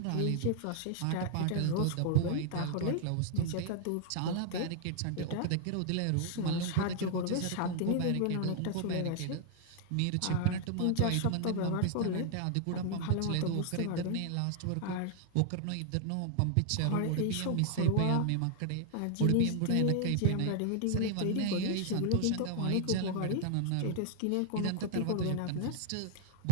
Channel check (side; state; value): both; different; correlation 0.00